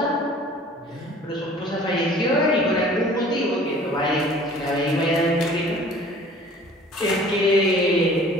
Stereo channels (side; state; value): both; normal; correlation 0.49